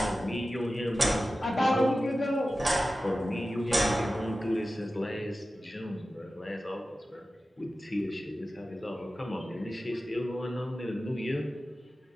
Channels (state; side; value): normal; both; correlation 0.94